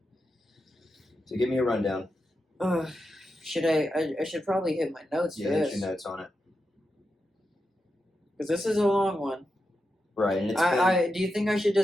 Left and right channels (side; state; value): both; normal; correlation 0.88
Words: So give me a rundown. Should I should probably hit my notes for Hit this, your notes on it. because this is a long one. Right, and it's Do you think I should